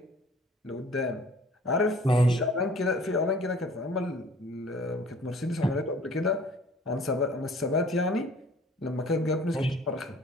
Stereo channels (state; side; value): normal; both; correlation 0.51